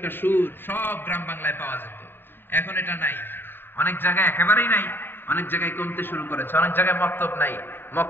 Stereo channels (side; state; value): right; late; 0.099 ms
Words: সুর সব গ্রাম বাংলায় পাওয়া যেত। এখন এটা নাই, অনেক জায়গায় একেবারেই নাই, অনেক জায়গায় কমতে শুরু করেছে। অনেক জায়গায় মক্তব নাই,